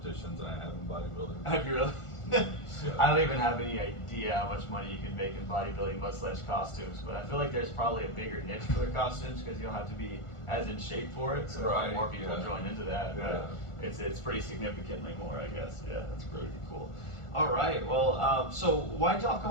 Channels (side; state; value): right; late; 1.4 ms